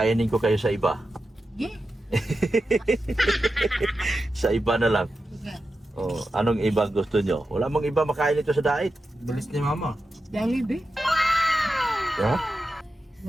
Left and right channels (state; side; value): normal; both; correlation 0.91